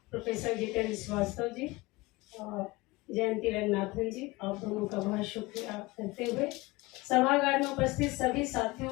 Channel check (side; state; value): right; quieter; 22.2 dB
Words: प्रोफेसर जितेंद्र श्रीवास्तव जी, जयंती रंगनाथन जी, आप दोनों का बहुत शुक्रिया करते हुए सभागार में उपस्थित सभी